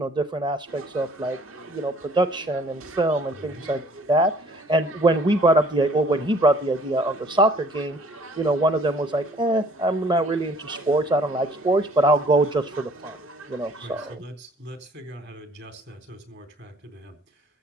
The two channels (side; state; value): both; normal; correlation 0.56